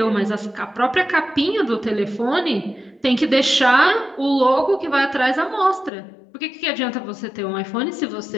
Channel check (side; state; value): right; drops out; at 5.9 s